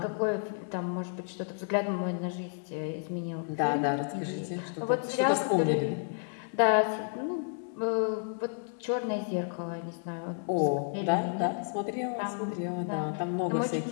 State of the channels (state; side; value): silent; right; digital silence